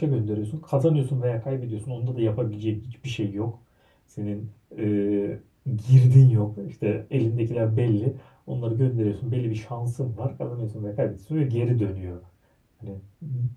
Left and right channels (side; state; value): both; identical; correlation 1.00